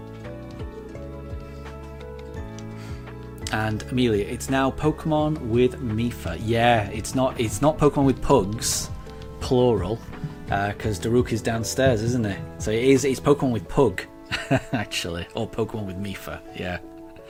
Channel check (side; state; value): both; identical; correlation 1.00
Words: And Amelia, it's now Pokemon with Mifa. Yeah, it's not Pokemon with Pugs, plural. Because Daruk is downstairs, isn't it? So it's Pokemon with Pug, actually, or Pokemon with Mifa. Yeah,